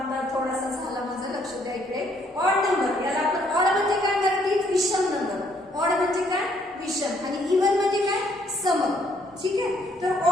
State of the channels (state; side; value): normal; both; correlation 0.67